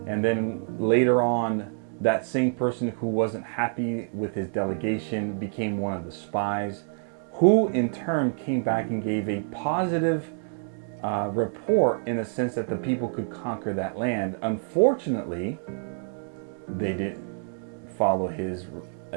and then later on, that same person who wasn't happy with his delegation became one of the spies, who in turn came back and gave a positive report in the sense that the people could conquer that land. Unfortunately, they didn't follow his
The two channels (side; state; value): left; silent; 60 dB below the other